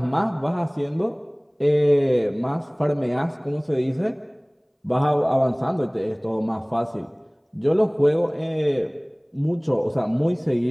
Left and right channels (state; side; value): identical; both; correlation 1.00